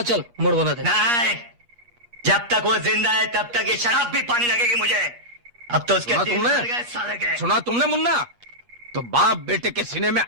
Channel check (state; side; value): late; left; 8.4 ms